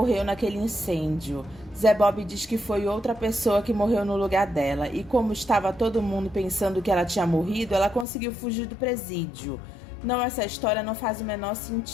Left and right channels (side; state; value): right; drops out; at 8.1 s